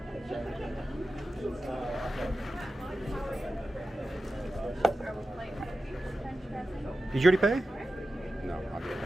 Did you already pay? No, I'll get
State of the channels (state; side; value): normal; both; correlation 0.93